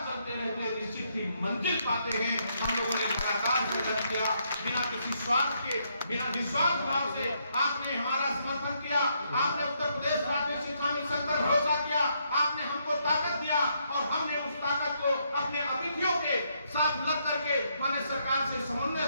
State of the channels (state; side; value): inverted; both; correlation -0.75